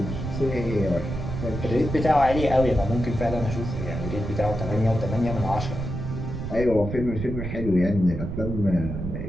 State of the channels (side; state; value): right; noise; rumble, 5 dB below the sound